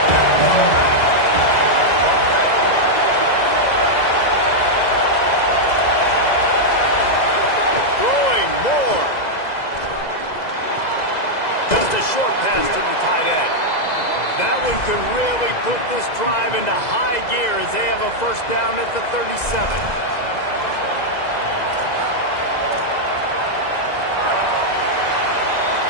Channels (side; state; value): right; late; 2.0 ms